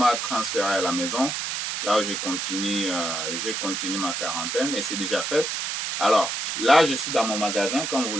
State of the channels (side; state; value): right; noise; hiss, 3 dB below the sound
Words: transféré à la maison, là où j'ai continué ma quarantaine et c'est déjà fait. Alors, là, je suis dans mon magasin, comme vous